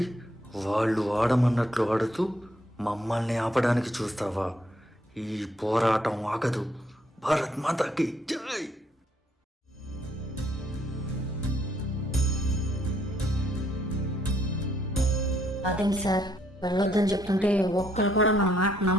వాళ్ళు ఆడమన్నట్లు ఆడుతూ మమ్మల్ని ఆపడానికి చూస్తావా? ఈ పోరాటం ఆగదు. భారత్ మాతాకి జై. అదేంటి సార్, వెళ్ళొద్దని చెప్తుంటే ఒక్కరు కూడా మన మాట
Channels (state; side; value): normal; both; correlation 0.70